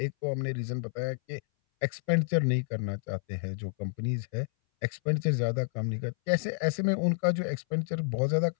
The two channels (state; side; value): silent; right; 58 dB below the other